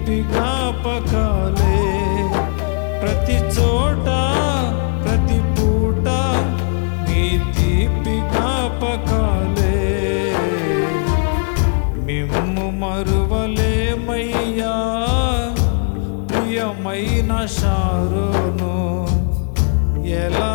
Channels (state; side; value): silent; right; 57 dB below the other